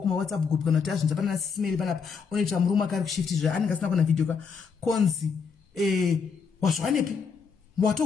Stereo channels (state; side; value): quieter; right; 5.7 dB